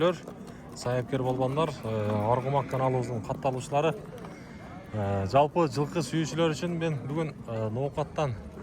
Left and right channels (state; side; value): identical; both; correlation 1.00